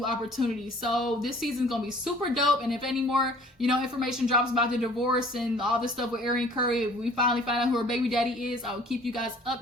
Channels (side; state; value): both; normal; correlation 0.52